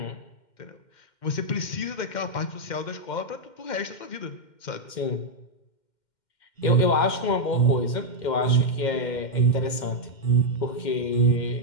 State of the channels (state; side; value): late; right; 2.1 ms